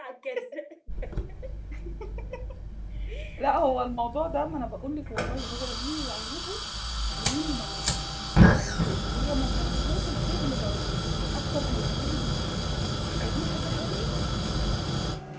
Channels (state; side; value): identical; both; correlation 1.00